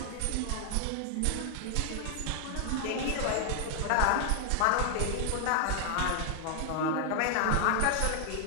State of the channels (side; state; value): both; different; correlation 0.00